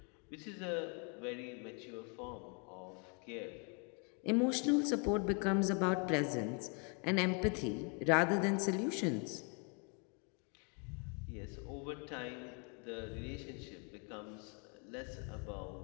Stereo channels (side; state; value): right; quieter; 35.5 dB